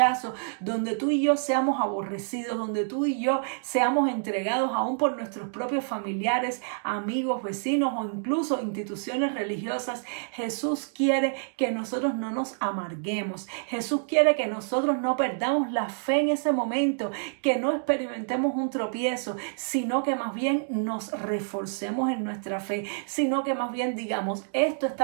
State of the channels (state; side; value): silent; left; digital silence